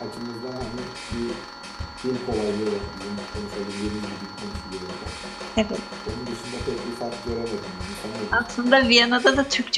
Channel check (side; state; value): both; identical; correlation 1.00